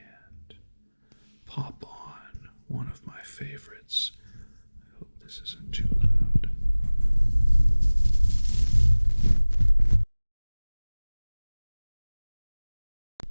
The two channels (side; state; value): both; inverted; correlation -1.00